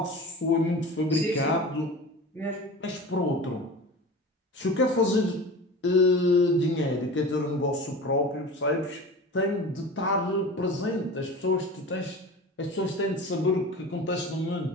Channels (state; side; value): normal; both; correlation 0.34